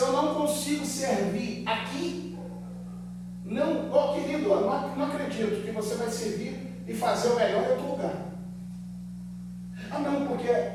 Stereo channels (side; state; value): both; identical; correlation 1.00